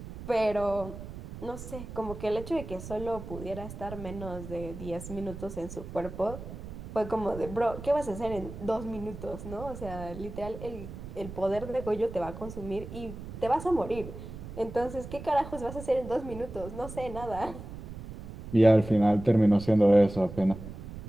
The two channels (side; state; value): right; noise; rumble, 11 dB below the sound